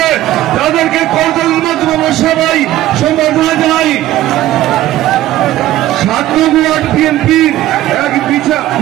তাদেরকে করতালির মাধ্যমে সবাই সম্বর্ধনা জানাই। 7 নং ওয়ার্ড বিএনপির এক বিশাল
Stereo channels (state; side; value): quieter; left; 14.5 dB